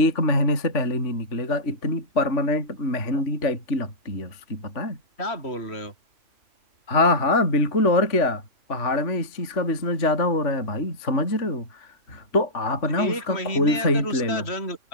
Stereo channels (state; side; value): late; right; 3.4 ms